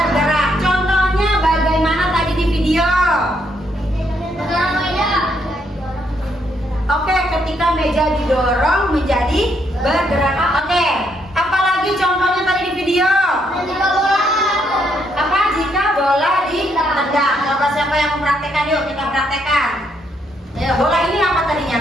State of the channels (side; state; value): both; normal; correlation 0.74